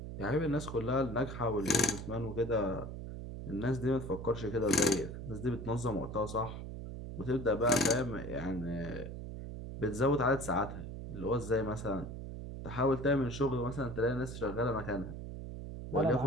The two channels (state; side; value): noise; right; hum, 8 dB below the sound